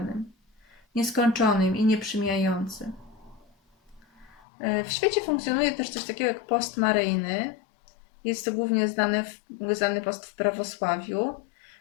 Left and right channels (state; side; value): drops out; right; at 4.5 s